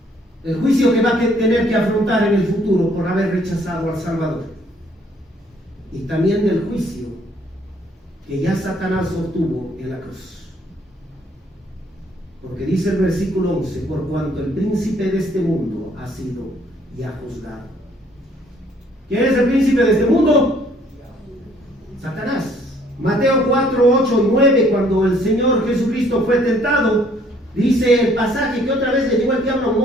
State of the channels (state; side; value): normal; both; correlation 0.62